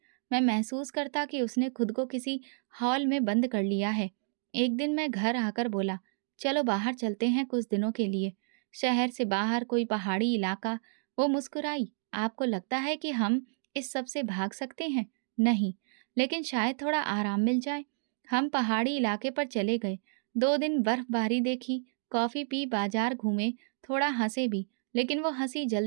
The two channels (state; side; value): silent; left; digital silence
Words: मैं महसूस करता कि उसने खुद को किसी हॉल में बंद कर लिया है। एक दिन मैं घर आकर बोला, चलो बाहर चलते हैं कुछ दिनों के लिए, शहर से बाहर, कोई पहाड़ी इलाका। वो मुस्कुराई, आपको लगता है कि हम इस सब से भाग सकते हैं? नहीं, लेकिन शायद थोड़ा आराम मिल जाए। हम पहाड़ी इलाके पर चले गए। 2 दिन बर्फबारी देखी, कॉफ़ी पी, बाजार घूमे, थोड़ा हंसे भी, लेकिन वो हंसी